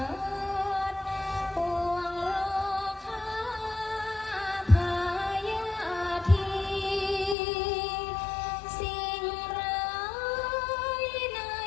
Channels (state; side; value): drops out; right; at 7.4 s